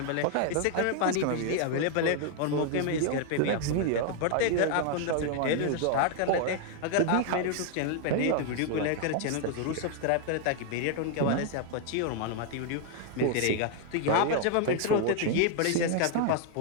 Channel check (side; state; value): both; different; correlation 0.00